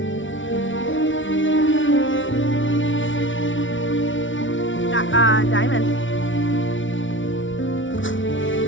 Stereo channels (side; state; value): right; late; 0.56 ms